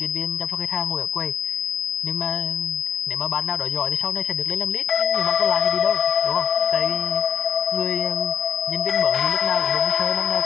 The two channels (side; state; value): right; quieter; 7.9 dB